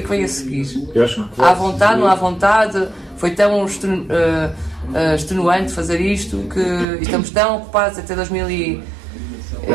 que vem a seguir. Há vontade, não há vontade, foi tão extenuante fazer isto que estamos tão ocupados até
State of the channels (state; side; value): drops out; left; at 6.9 s